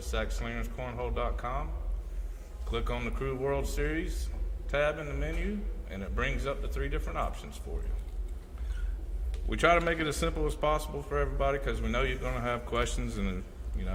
sackslingerscornhole.com, click on the Crew World Series tab in the menu, and it brings up the 3 different options for you. We try to make it as simple as possible for everybody because we know you're going to have questions, and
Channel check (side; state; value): both; identical; correlation 1.00